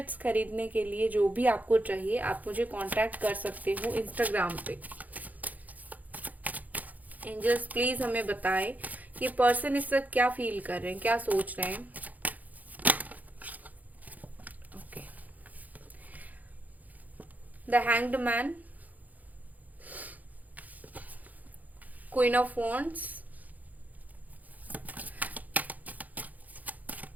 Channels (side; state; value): left; late; 0.079 ms